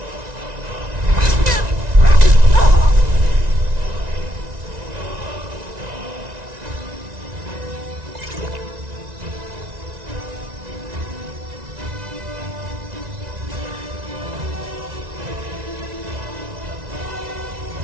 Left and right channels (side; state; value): left; late; 1.9 ms